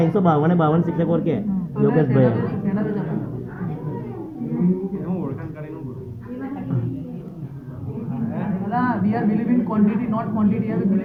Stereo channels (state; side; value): identical; both; correlation 1.00